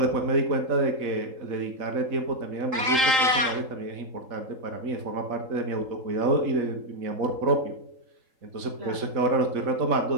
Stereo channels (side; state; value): left; late; 3.8 ms